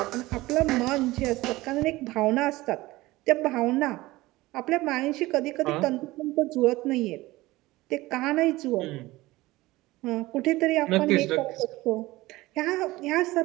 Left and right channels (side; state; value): left; quieter; 19.1 dB